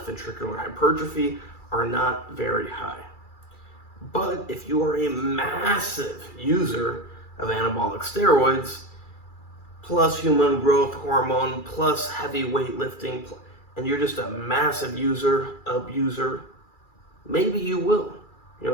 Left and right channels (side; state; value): right; late; 2.3 ms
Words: ventricular hypertrophy are not very high. But if you are a massive user of anabolic steroids, plus human growth hormone, plus heavy weightlifting, and you're just a massive user, abuser, maybe you will. You